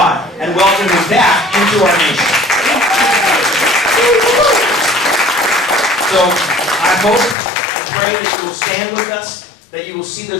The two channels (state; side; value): drops out; right; at 7.4 s